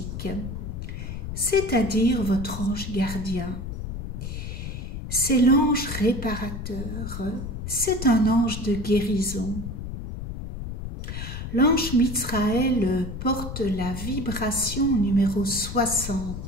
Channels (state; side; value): noise; left; rumble, 7 dB below the sound